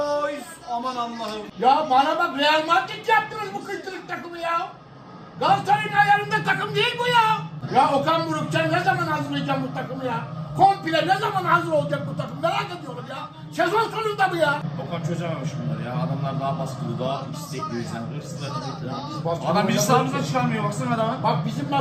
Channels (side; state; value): both; identical; correlation 1.00